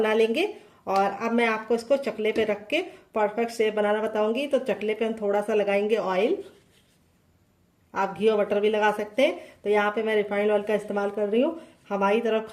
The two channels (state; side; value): identical; both; correlation 1.00